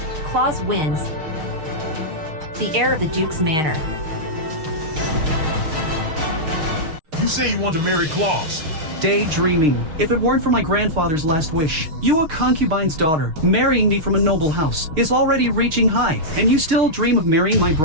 Claus wins. The heir of the Duke's manor. You say you want to marry Claus. Daydreaming. If it weren't for my grandfather's last wish, you a concubine's daughter, marrying me from a noble house, is already reaching high, and you still dream of marrying my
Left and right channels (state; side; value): late; left; 6.5 ms